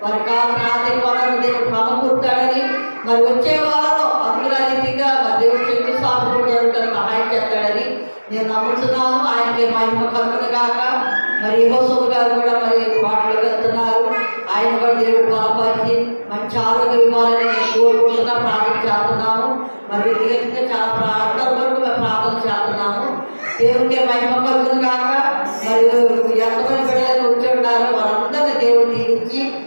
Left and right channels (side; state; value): both; inverted; correlation -1.00